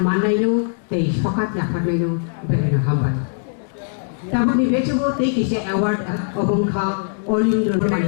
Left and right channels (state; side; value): silent; right; digital silence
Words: mannainu tei sokat yafarnainu belena hambai tabuk ni bechugo tei kise award obongkha Olindro